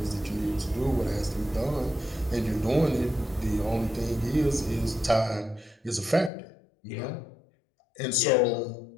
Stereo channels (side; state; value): right; drops out; at 6.3 s